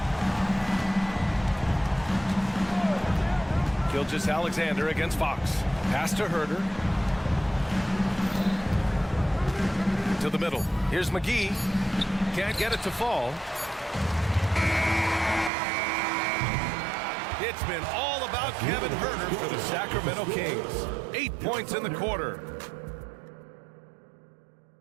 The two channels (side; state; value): left; drops out; at 15.5 s